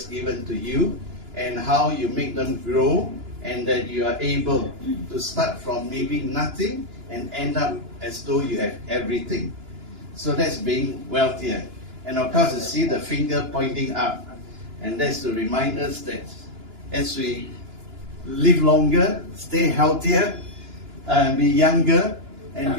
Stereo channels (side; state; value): left; late; 2.9 ms